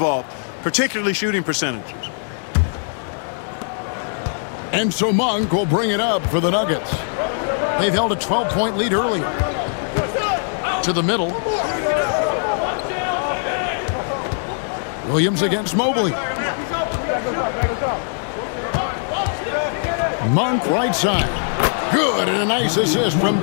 particularly shooting percentages. And so Monk will bring it up for the Nuggets. They've held a 12-point lead earlier. To the middle. Williams against Mobley. Monk right side. Good, and a nice assist from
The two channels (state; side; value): silent; right; 65 dB below the other